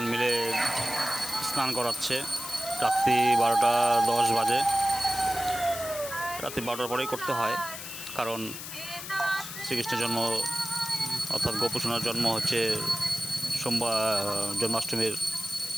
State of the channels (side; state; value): left; noise; hiss, 9 dB below the sound